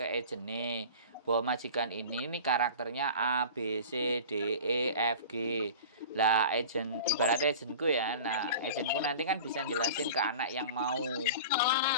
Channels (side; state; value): both; inverted; correlation -0.37